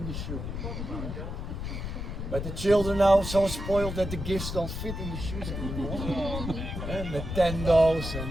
the shoe. But the children are now so spoiled that the gifts don't fit in the shoes anymore. And Nintendos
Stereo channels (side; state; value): left; noise; rumble, 5 dB below the sound